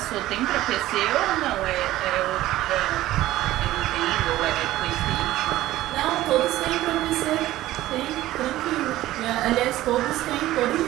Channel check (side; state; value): left; quieter; 15.5 dB